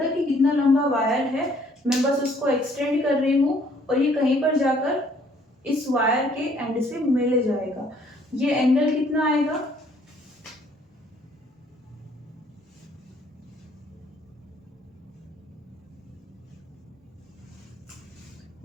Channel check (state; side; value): normal; both; correlation 0.62